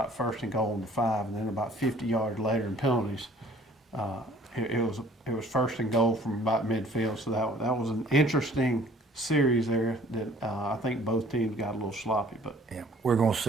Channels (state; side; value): normal; both; correlation 0.54